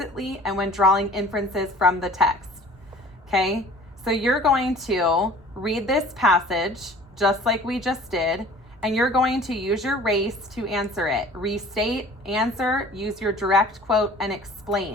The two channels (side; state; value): both; normal; correlation 0.47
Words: and when drawing inferences from the text. Okay, so you're going to read this passage just like we just did, and you're going to use your race to answer it. Restate, answer, use your direct quote, and